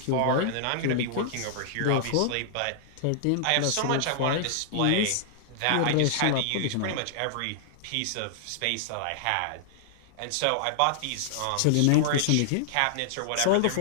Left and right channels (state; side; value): different; both; correlation -0.01